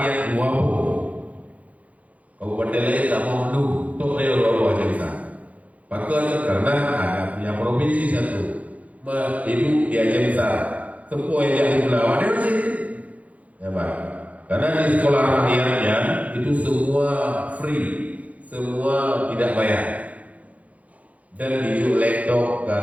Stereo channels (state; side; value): late; left; 0.069 ms